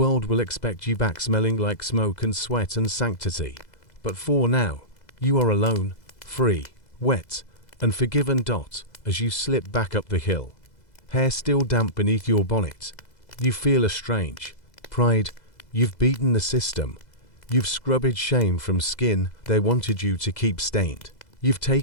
will expect you back, smelling like smoke and sweat and sanctity. But for now, you are alone, free, wet, and forgiven. As you slip back up the hill, hair still damp beneath your bonnet, you feel a strange pride. You've beaten the system. You've scrubbed shame from skin they wanted you to keep stained. You've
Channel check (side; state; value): right; late; 2.0 ms